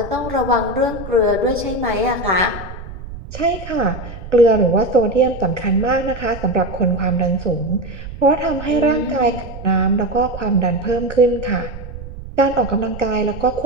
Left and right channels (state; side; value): noise; right; rumble, 12 dB below the sound